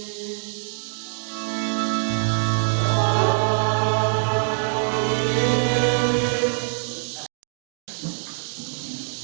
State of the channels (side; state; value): left; silent; 62 dB below the other